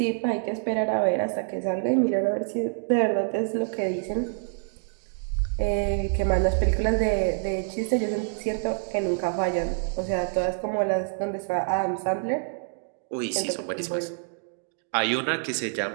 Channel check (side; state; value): left; silent; digital silence